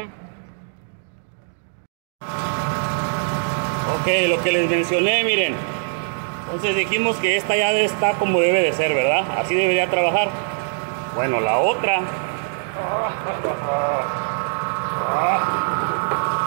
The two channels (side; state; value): left; silent; digital silence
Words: Ok, lo que les mencioné, miren. Entonces dijimos que esta ya está como debe de ser, ¿verdad? Así debería trabajar. Bueno, la otra...